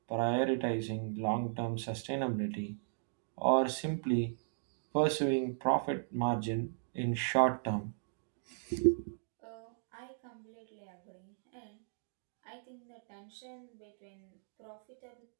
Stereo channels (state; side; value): silent; left; digital silence